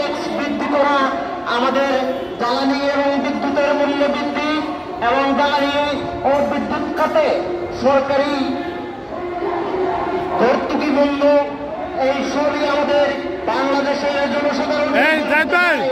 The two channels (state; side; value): identical; both; correlation 1.00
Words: বৃদ্ধি করা, আমাদের জ্বালানি এবং বিদ্যুতের মূল্য বৃদ্ধি এবং জ্বালানি ও বিদ্যুৎ খাতে সরকারি ভর্তুকি বন্ধ, এই সবই আমাদের বাংলাদেশের জনসাধারণের,